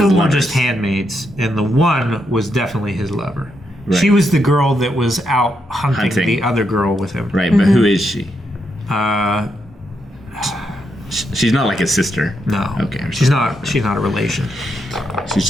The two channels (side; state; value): both; normal; correlation 0.81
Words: were lovers? just handmaids, and the one was definitely his lover. Right. She was the girl that was out hunting the other girl with him. Right, but who is she? Uh, She's not like his sister. No. Okay. She's not a relation. She's